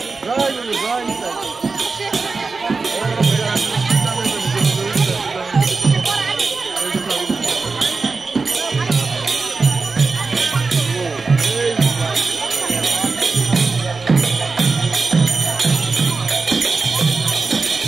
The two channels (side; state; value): left; quieter; 4.2 dB